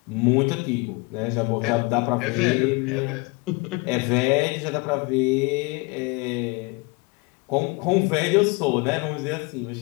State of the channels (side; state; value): right; quieter; 27.7 dB